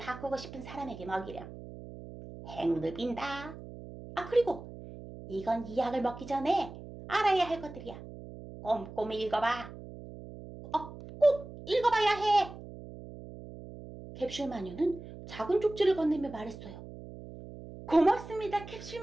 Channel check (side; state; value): right; noise; hum, 14 dB below the sound